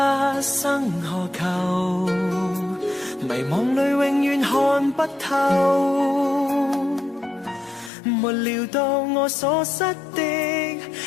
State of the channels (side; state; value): right; drops out; at 7.9 s